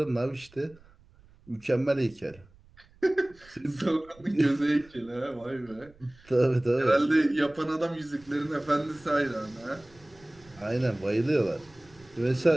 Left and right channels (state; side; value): noise; right; rumble, 27 dB below the sound